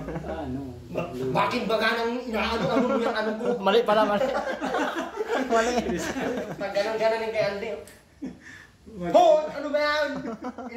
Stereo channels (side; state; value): both; identical; correlation 1.00